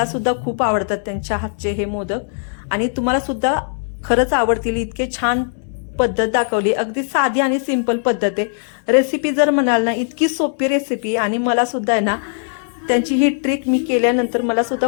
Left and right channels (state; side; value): silent; right; digital silence